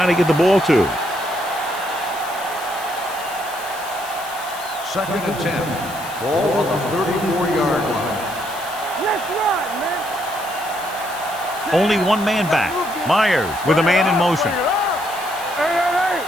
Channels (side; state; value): left; noise; hiss, 15 dB below the sound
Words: to get the ball to. Second and 10. Ball on the 34-yard line. Only one man back. Myers with a man in motion. Hey.